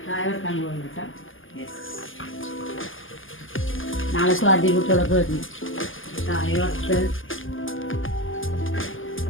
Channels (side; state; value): right; late; 0.58 ms